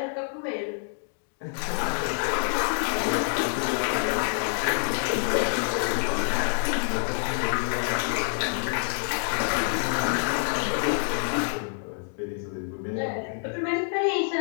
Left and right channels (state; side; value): silent; right; 60 dB below the other